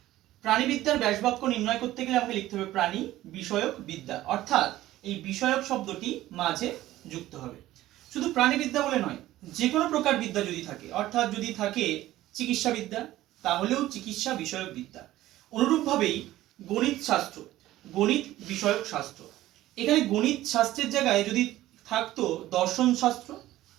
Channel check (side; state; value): left; quieter; 15.2 dB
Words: প্রাণীবিদ্যার ব্যাসবাক্য নির্ণয় করতে গেলে আমাকে লিখতে হবে প্রাণী বিষয়ক বিদ্যা, অর্থাৎ এই বিষয়ক শব্দটি মাঝে যুক্ত হবে। শুধু প্রাণীবিদ্যা বলে নয়, যে কোনো প্রকার বিদ্যা যদি থাকে, অর্থাৎ যদি থাকে চিকিৎসা বিদ্যা, তাহলেও চিকিৎসা বিষয়ক বিদ্যা। অনুরূপভাবেই গণিত শাস্ত্র, গণিত বিষয়ক শাস্ত্র। এখানে গণিত শাস্ত্রের জায়গায় যদি থাকতো দর্শন শাস্ত্র,